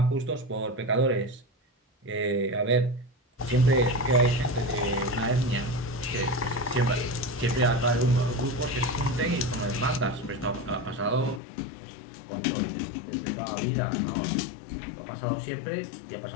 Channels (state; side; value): drops out; right; at 11.4 s